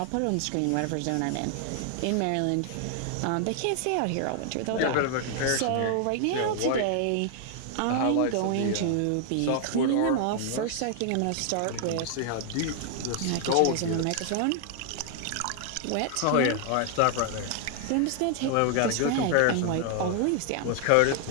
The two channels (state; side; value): different; both; correlation 0.00